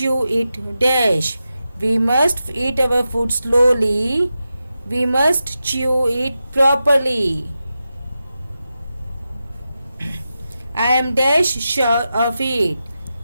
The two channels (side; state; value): both; inverted; correlation -0.91